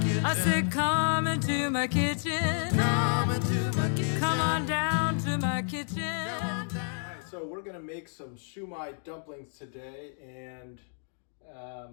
kitchen. I said, come into my kitchen. Come into my kitchen. Come on down to my kitchen. Alright, so we're gonna make some Shu Mai dumplings today, and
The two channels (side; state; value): right; silent; digital silence